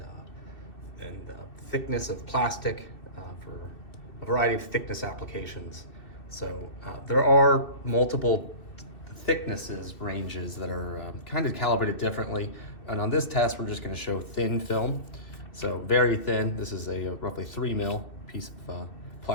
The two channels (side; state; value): right; late; 2.6 ms